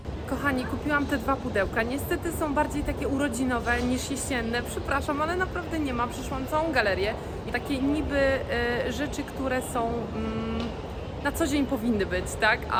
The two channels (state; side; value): identical; both; correlation 1.00